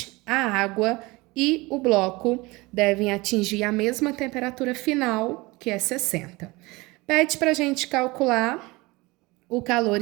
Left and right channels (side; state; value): left; quieter; 22.9 dB